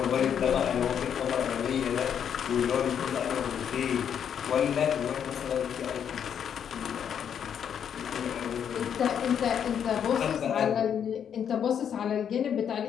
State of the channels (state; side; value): quieter; right; 8.4 dB